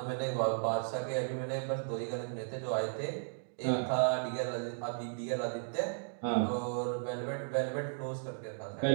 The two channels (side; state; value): left; silent; digital silence